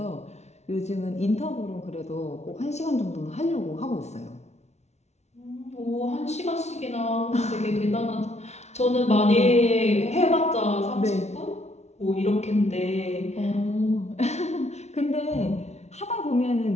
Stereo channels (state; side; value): late; right; 0.32 ms